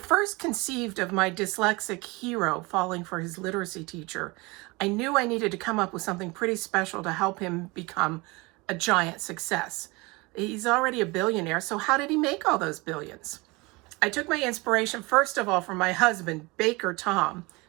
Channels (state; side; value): quieter; left; 24.9 dB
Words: conceived of my dyslexic hero falling for his literacy teacher, I knew I needed to come up with something pretty special to help him become a giant success. He's already a billionaire, so how did he make all those billions? I took my inspiration, first of all, from my husband, Baker Tom,